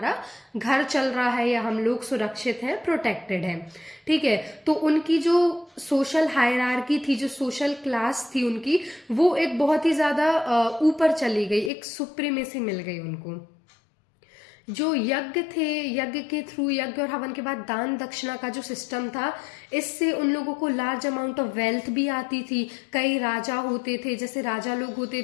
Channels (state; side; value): drops out; right; at 11.7 s